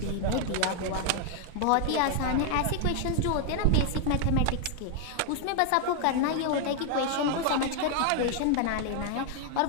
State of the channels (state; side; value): different; both; correlation 0.00